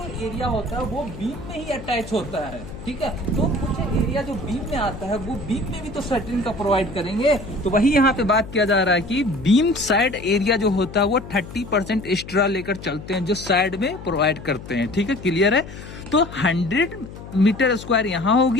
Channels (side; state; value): left; noise; hum, 13 dB below the sound